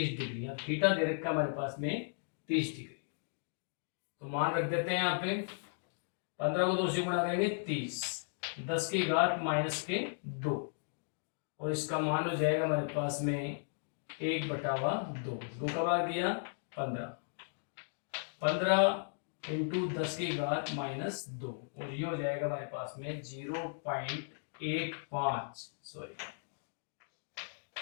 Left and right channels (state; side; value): silent; right; digital silence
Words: डिग्री। अब थीटा दे रखा हमारे पास में 30 डिग्री। तो मान रख देते हैं यहाँ पे, 15 को 2 से गुणा करेंगे 30, 10 की घात -2, और इसका मान हो जाएगा हमारे पास में 1/2। 2 का भाग दिया 15, 15 इंटू 10 की घात -2, और ये हो जाएगा हमारे पास में 0.15, सॉरी।